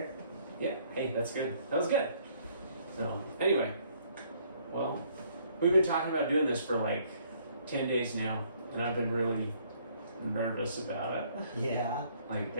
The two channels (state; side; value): inverted; both; correlation -0.63